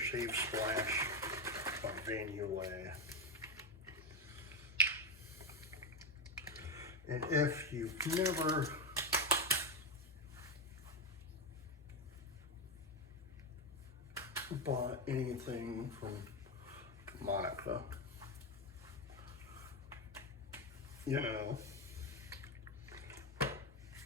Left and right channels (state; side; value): normal; both; correlation 0.11